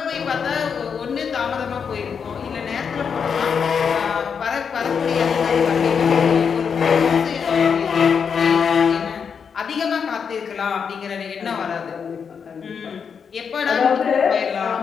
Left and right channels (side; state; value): right; quieter; 6.5 dB